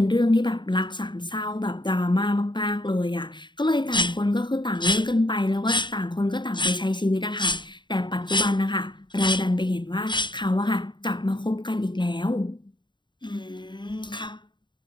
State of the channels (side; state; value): right; late; 0.22 ms